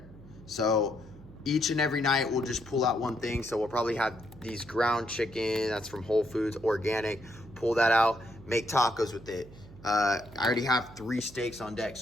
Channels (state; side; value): noise; right; hum, 19 dB below the sound